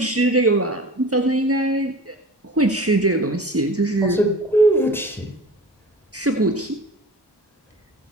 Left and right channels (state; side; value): normal; both; correlation 0.39